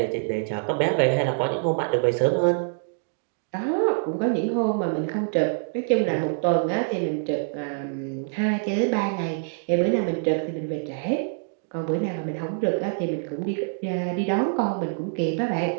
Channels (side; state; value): left; silent; digital silence